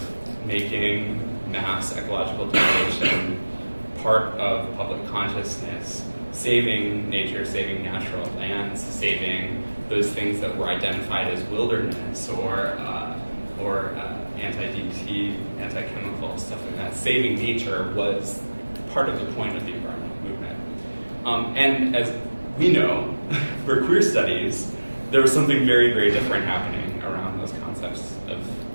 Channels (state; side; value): inverted; both; correlation -1.00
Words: making mass ecological degradation part of public consciousness, saving nature, saving natural lands, saving those things that were identified as wilderness or anti-DT, anti-chemical, stuff like that. Saving nature was part of the point of the environmental movement. And as we know, for queer studies, there was something very, very different happening around those concepts of